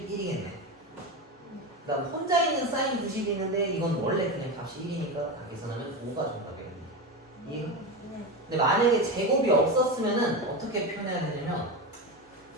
그다음 혼자 있는 사인 90이 있는데 이건 원래 그냥 값이 1이니까 다 계산하면 5가 정답이겠네. 이해가? 근데 만약에 제곱이 없었으면은 어떻게 표현해야 되냐면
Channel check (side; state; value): both; normal; correlation 0.19